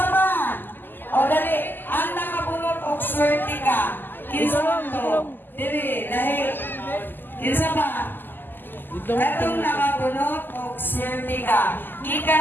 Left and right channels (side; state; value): right; late; 0.091 ms